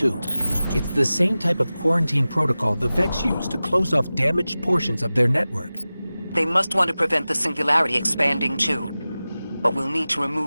It's the same type of quarantine protocol the Vex use to close off damaged portions of their network. They must want to prevent the singularity expanding too. But we'll need to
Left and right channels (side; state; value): both; inverted; correlation -0.96